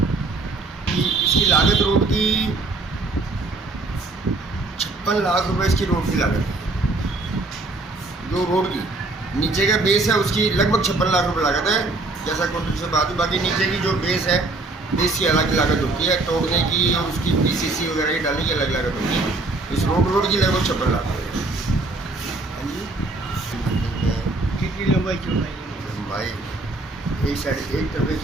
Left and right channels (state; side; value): quieter; left; 3.2 dB